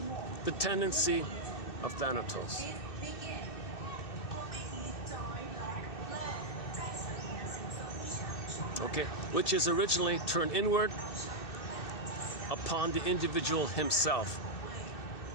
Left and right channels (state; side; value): late; right; 2.6 ms